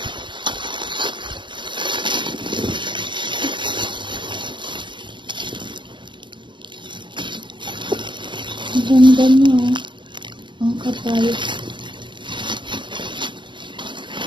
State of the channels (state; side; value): late; left; 0.23 ms